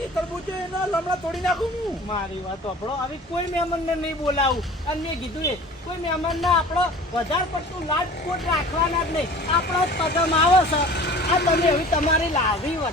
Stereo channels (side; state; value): both; normal; correlation 0.43